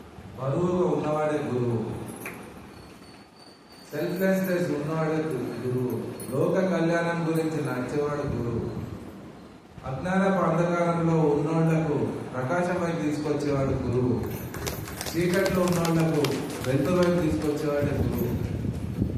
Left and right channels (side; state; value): both; identical; correlation 1.00